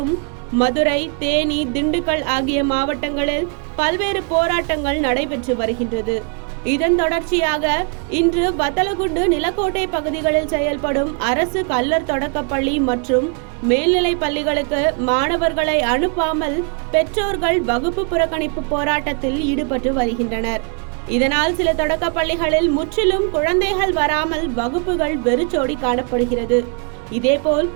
மதுரை, தேனி, திண்டுக்கல் ஆகிய மாவட்டங்களில் பல்வேறு போராட்டங்கள் நடைபெற்று வருகின்றது. இதன் தொடர்ச்சியாக இன்று வத்தலகுண்டு, நிலக்கோட்டை பகுதிகளில் செயல்படும் அரசு கல்லர் தொடக்கப்பள்ளி மற்றும் மேல்நிலை பள்ளிகளுக்கு மாணவர்களை அனுப்பாமல் பெற்றோர்கள் வகுப்பு புறக்கணிப்பு போராட்டத்தில் ஈடுபட்டு வருகின்றனர். இதனால் சில தொடக்க பள்ளிகளில் முற்றிலும் குழந்தைகள் வராமல் வகுப்புகள் வெறிச்சோடி காணப்படுகிறது. இதேபோல்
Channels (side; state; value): left; quieter; 38.6 dB